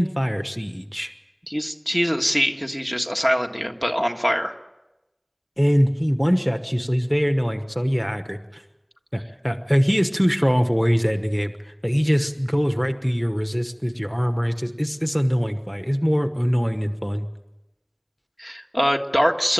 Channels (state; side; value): identical; both; correlation 1.00